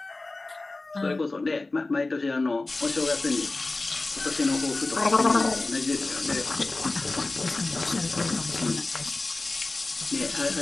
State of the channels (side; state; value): right; quieter; 3.2 dB